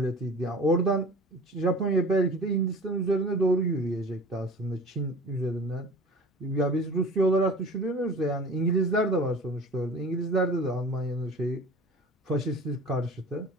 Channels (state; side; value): normal; both; correlation 0.40